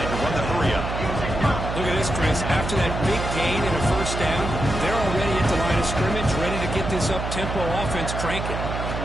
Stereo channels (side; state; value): right; noise; hum, 4 dB below the sound